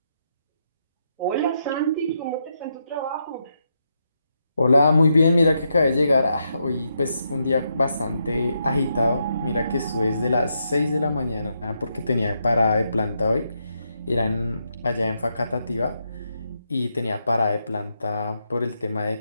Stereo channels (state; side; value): inverted; both; correlation -0.81